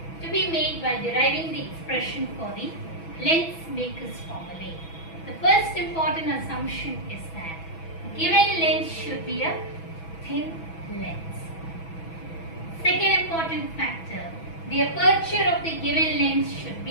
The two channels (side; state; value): right; late; 6.1 ms